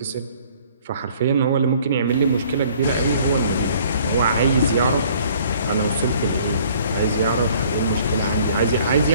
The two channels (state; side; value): inverted; both; correlation -0.57